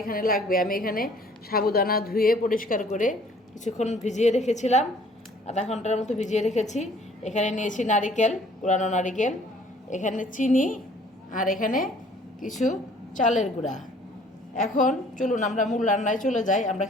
এখানে লাগবে, আমি এখানে সাবুদানা ধুয়ে পরিষ্কার করে কিছুক্ষণ ভিজিয়ে রেখেছিলাম, আধা ঘন্টার মতো ভিজিয়ে রেখেছি। এখানে নিয়েছি নারিকেল, কুড়ানো নারিকেল, এখানে চিনি, আর এখানে কিছু চালের গুঁড়া। এখন চলুন আমরা মূল রান্নায় চলে যাই, আমরা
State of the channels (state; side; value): normal; both; correlation 0.56